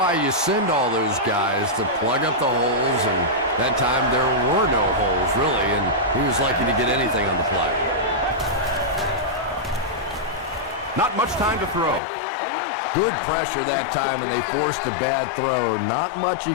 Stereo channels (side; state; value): right; drops out; at 12.0 s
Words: you send all those guys to plug up the holes, and that time there were no holes, really, and he was lucky to get anything on the play. Not much time to throw. Good pressure that time, and they forced a bad throw. Not much he